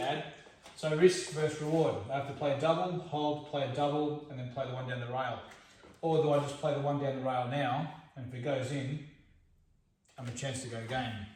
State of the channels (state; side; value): identical; both; correlation 1.00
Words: So risk versus reward. I have to play a double, hold, play a double, and then play the one down the rail. Or do I just play the one down the rail now, and if it goes in, I have a chance to go game.